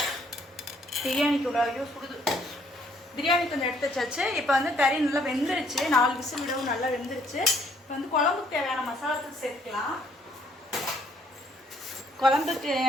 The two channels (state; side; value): normal; both; correlation 0.65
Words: பிரியாணிக்கு ஐயோ சுடுது. பிரியாணி கொஞ்சம் எடுத்து வச்சாச்சு. இப்போ வந்து கறி நல்லா வெந்துருச்சு. 4 விசில் விடவும் நல்லா வெந்துருச்சு. இப்போ வந்து குழம்புக்கு தேவையான மசாலாத்தூள் சேர்க்கலாம். குழம்புக்கு